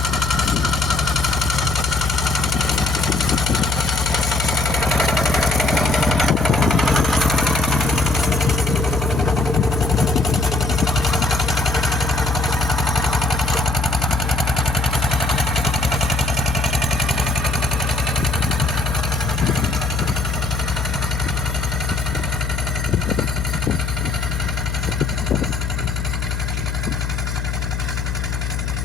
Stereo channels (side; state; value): left; noise; hum, 2 dB below the sound